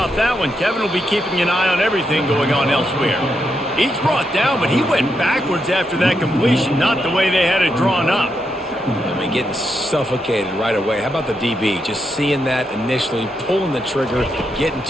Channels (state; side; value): normal; both; correlation 0.82